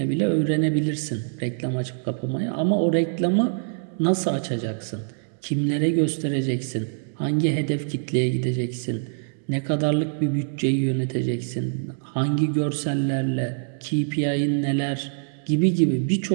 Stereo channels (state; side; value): silent; left; digital silence